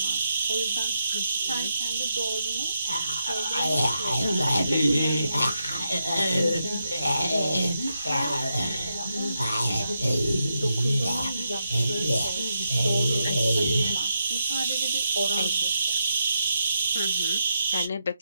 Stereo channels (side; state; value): both; inverted; correlation -0.84